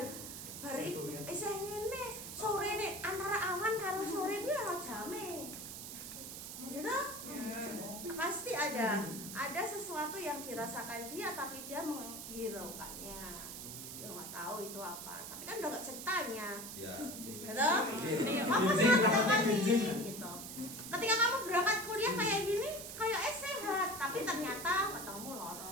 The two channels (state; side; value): noise; right; hiss, 9 dB below the sound